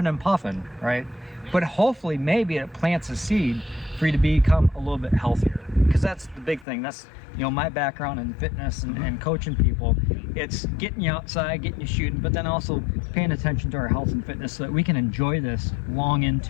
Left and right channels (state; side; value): drops out; right; at 6.7 s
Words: and puffing, right? But hopefully maybe it plants a seed for you to become a little bit healthier, because that's the big thing. That's my background in fitness and coaching people. It's getting you outside, getting you shooting, but then also paying attention to our health and fitness so that we can enjoy this long